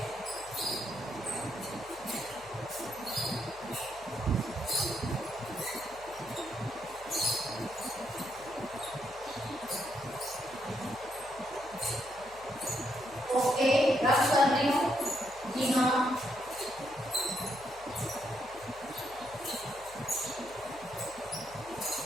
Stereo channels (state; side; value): noise; left; hum, 22 dB below the sound